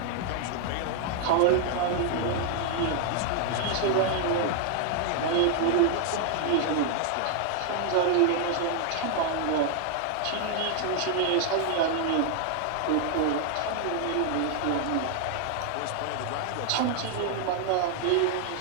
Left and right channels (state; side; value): different; both; correlation 0.00